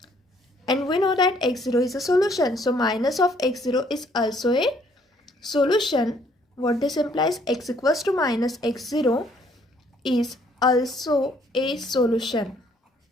And we know that x0 is a solution, so minus of x0 is also a solution. What this implies? X equals to minus x0 is also a solution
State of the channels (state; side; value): normal; both; correlation 0.64